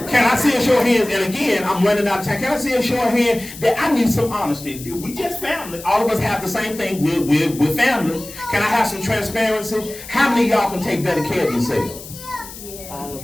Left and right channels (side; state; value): left; noise; hiss, 14 dB below the sound